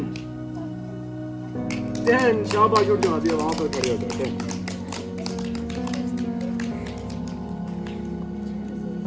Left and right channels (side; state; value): both; identical; correlation 1.00